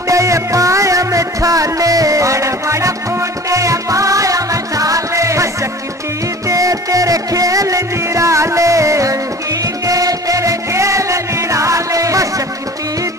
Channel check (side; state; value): both; normal; correlation 0.42